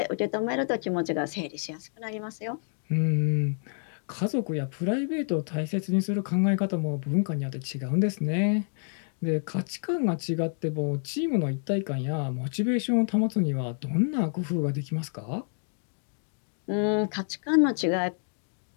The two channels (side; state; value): right; silent; 59 dB below the other